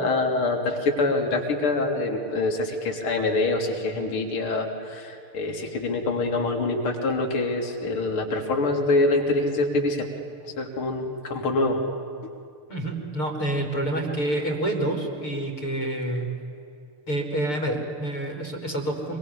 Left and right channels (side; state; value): right; late; 6.7 ms